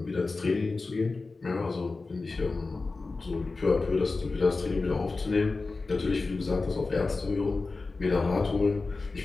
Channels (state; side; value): quieter; right; 3.8 dB